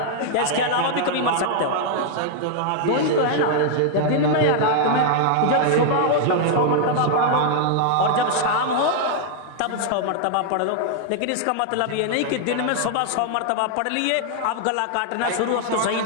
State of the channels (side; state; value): both; different; correlation 0.00